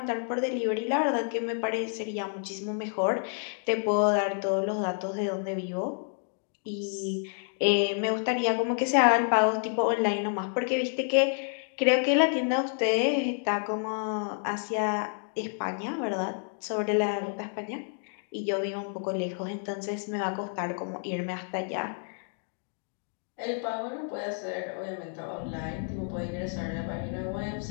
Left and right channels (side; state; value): right; silent; 55 dB below the other